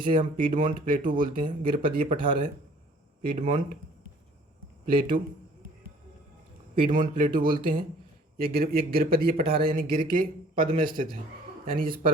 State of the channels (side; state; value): both; normal; correlation 0.55